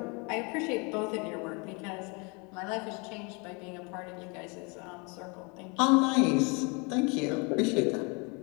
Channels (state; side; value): quieter; right; 31.2 dB